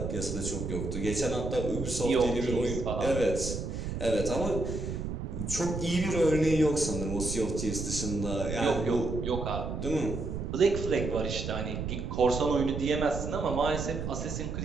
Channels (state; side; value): noise; right; rumble, 4 dB below the sound